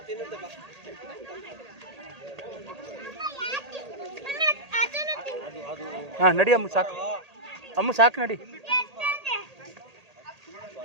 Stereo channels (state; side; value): late; left; 1.8 ms